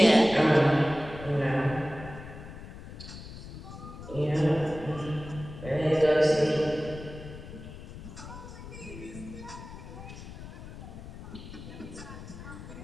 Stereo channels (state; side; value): noise; left; rumble, 13 dB below the sound